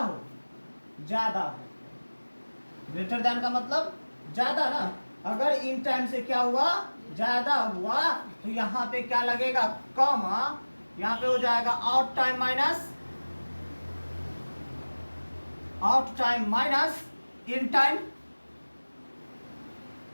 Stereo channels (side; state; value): both; inverted; correlation -1.00